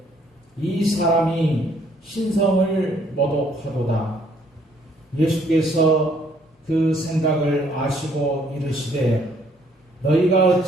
이 사람이 신성을 모독하도다. 예수께서 그 생각을 아시고 이르시되 너희가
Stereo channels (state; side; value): normal; both; correlation 0.65